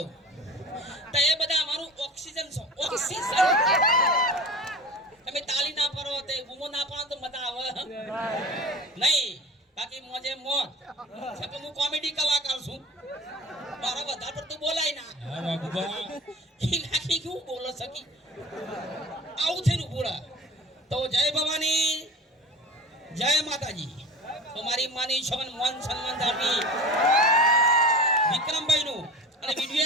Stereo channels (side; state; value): both; normal; correlation 0.37